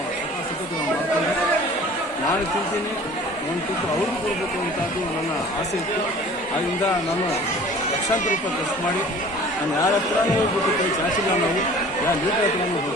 ಸತತ ಮಾಡ್ಕೊಂಡೆ. ನಾನು ತಿಂತೀನಿ, ಒಂದು ತುತ್ತು ಅವ್ರಿಗೂ ಕೊಡಬೇಕು ಅಂತದ್ದು ನನ್ನ ಆಸೆ ಇತ್ತು. ಆದ್ದರಿಂದ ನಾನು ಲಕ್ಷಾಂತರ ರೂಪಾಯಿ ಖರ್ಚು ಮಾಡಿ ನಾನು ಯಾರ ಹತ್ರನೂ ಹೋಗ್ಬಿಟ್ಟು ಕೈ ಚಾಚಿಲ್ಲ. ನಾವು ಯಾರ ಲೀಡರ್ ಹತ್ರನೂ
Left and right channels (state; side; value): normal; both; correlation 0.47